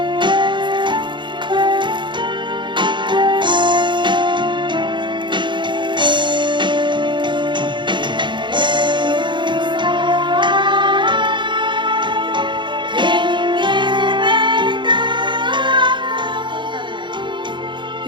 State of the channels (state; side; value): late; left; 0.23 ms